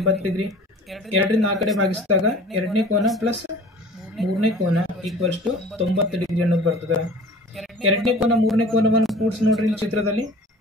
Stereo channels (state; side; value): normal; both; correlation 0.44